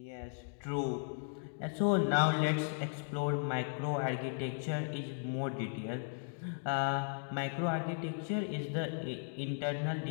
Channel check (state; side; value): silent; right; digital silence